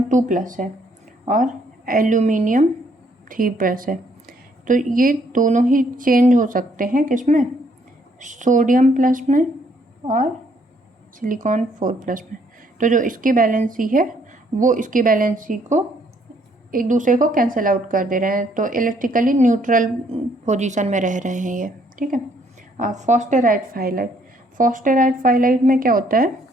2+ है और एल्यूमिनियम 3+ है, तो ये दोनों ही चेंज हो सकते हैं किसमें, सोडियम प्लस में और सिलिकॉन 4+ में। तो जो इसकी बैलेंसी है वो इसकी बैलेंसी को एक दूसरे को कैंसिल आउट कर दे रहे हैं, तो इलेक्ट्रिकली न्यूट्रल पोजीशन में रह रहे हैं ये, ठीक है। फॉस्फेराइड फाइलाइट में क्या होता है,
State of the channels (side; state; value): both; normal; correlation 0.67